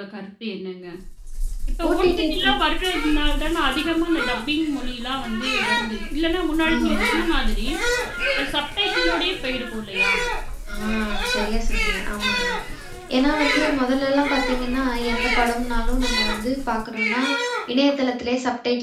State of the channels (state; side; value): identical; both; correlation 1.00